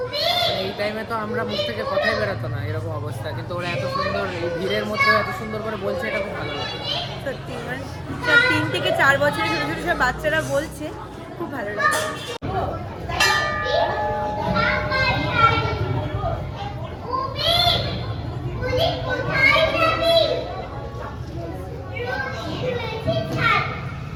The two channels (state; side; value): identical; both; correlation 1.00